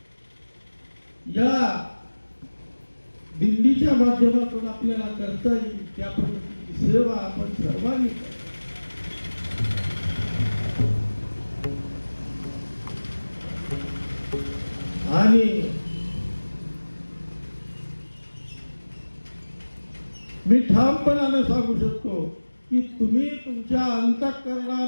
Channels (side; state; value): both; inverted; correlation -1.00